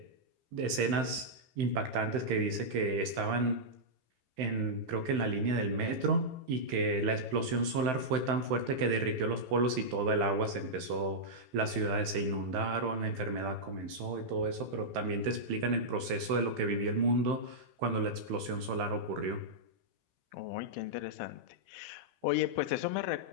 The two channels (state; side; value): late; left; 15 ms